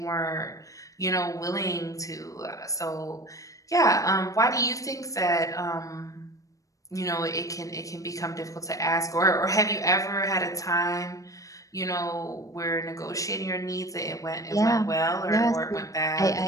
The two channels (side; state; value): right; late; 0.16 ms